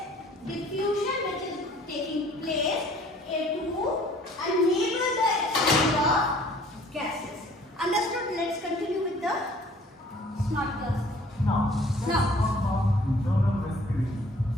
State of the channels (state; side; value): normal; both; correlation 0.54